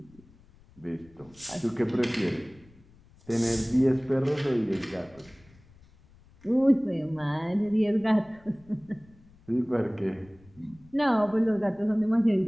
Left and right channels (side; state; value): left; noise; rumble, 27 dB below the sound